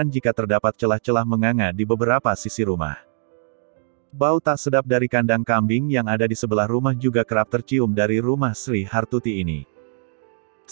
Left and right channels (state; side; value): silent; left; digital silence